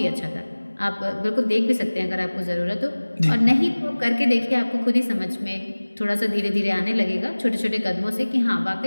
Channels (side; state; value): both; inverted; correlation -1.00